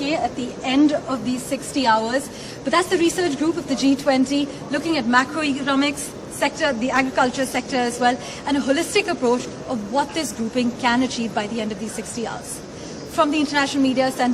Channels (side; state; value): both; identical; correlation 1.00